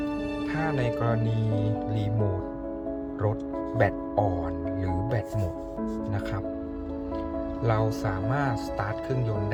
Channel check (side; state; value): both; identical; correlation 1.00